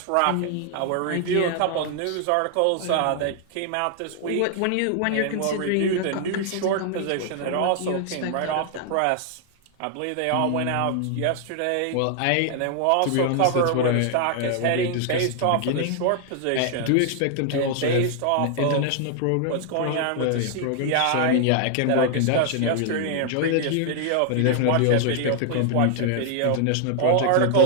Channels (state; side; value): different; both; correlation 0.00